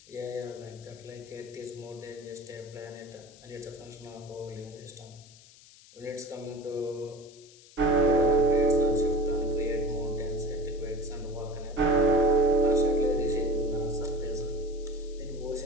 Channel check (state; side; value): noise; left; hiss, 23 dB below the sound